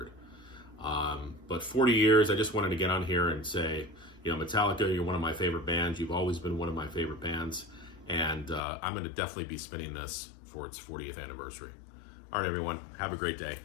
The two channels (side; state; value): right; drops out; at 8.6 s